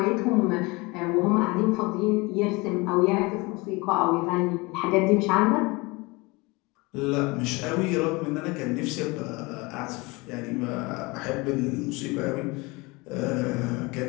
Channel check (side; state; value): right; quieter; 25.0 dB